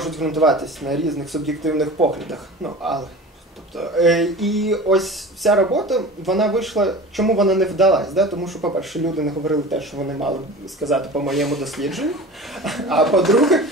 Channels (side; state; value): both; normal; correlation 0.36